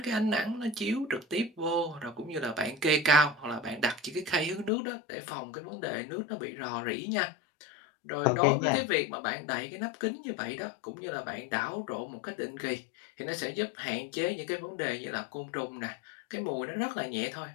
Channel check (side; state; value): right; drops out; at 4.7 s